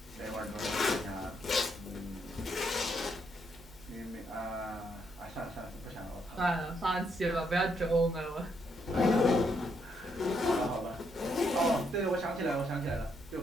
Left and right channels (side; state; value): both; normal; correlation 0.76